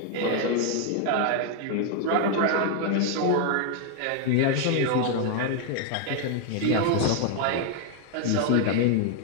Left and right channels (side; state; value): both; different; correlation 0.00